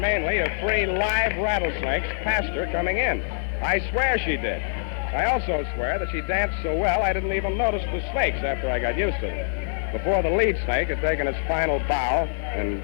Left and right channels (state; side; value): silent; right; digital silence